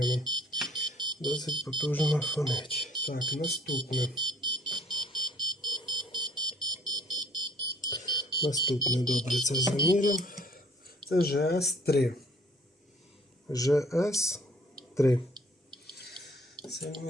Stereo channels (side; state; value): both; normal; correlation 0.59